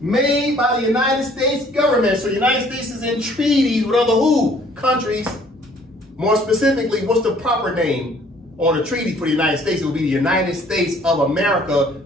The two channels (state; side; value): normal; both; correlation 0.58